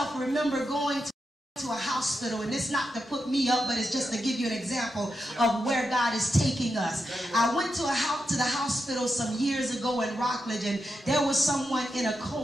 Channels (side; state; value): both; normal; correlation 0.87